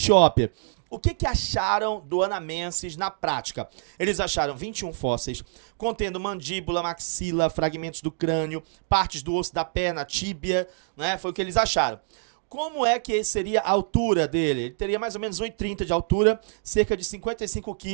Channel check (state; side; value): silent; left; digital silence